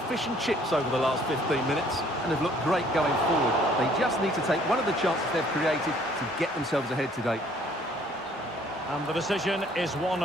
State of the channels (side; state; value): both; normal; correlation 0.60